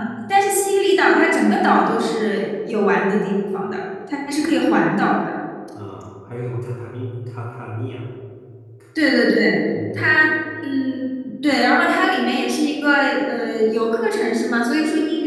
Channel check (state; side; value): identical; both; correlation 1.00